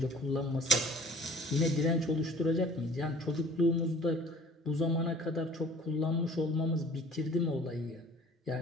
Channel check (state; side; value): normal; both; correlation 0.49